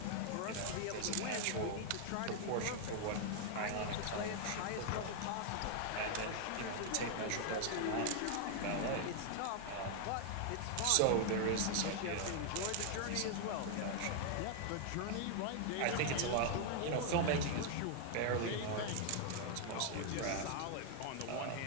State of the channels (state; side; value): different; both; correlation 0.00